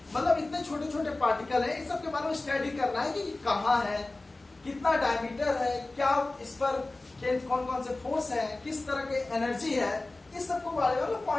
मतलब इतने छोटे छोटे पार्टिकल है, इस सब के बारे में स्टडी करना है कि कहाँ है, कितना डायमीटर है, क्या इस पर कौन कौन से फोर्स है, किस तरह की एनर्जी है, इस सब के बारे में हम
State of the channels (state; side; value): quieter; right; 3.0 dB